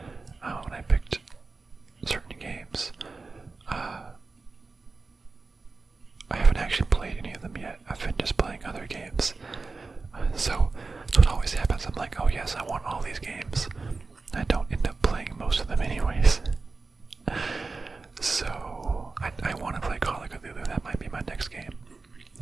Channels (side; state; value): left; quieter; 3.9 dB